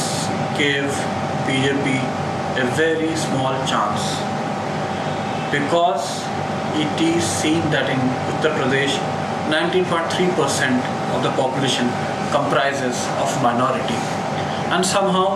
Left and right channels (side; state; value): both; identical; correlation 1.00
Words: gave BJP a very small chance because it is seen that in Uttar Pradesh 19.3% of the population comprises of minority, and